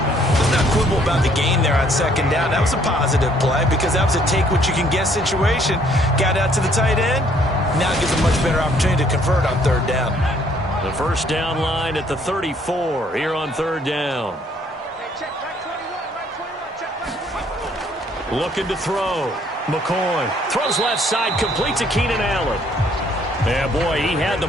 Let's not quibble about the gain there on second down. That was a positive play because that was a take-what-you-can-get situation. Got out to the tight end. Now it gives a much better opportunity to convert on third down. The first down line at the 34 here on third down. Looking to throw. McCoy throws left side, complete to Keenan Allen. Yeah, boy, he had the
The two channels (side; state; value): both; normal; correlation 0.64